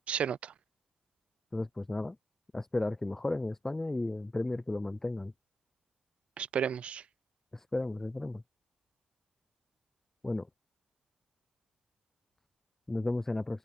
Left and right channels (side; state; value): both; normal; correlation 0.88